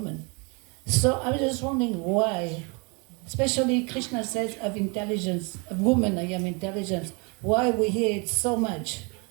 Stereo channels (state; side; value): quieter; left; 31.4 dB